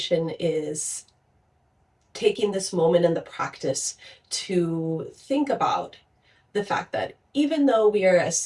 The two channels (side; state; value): both; identical; correlation 1.00